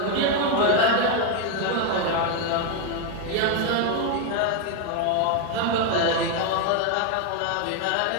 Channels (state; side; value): different; both; correlation 0.01